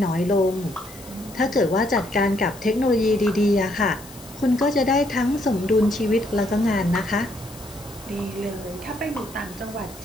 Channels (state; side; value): noise; left; hiss, 19 dB below the sound